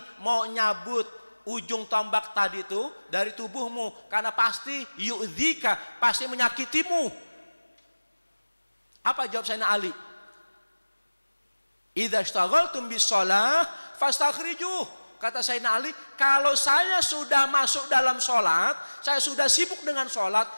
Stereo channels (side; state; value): both; inverted; correlation -1.00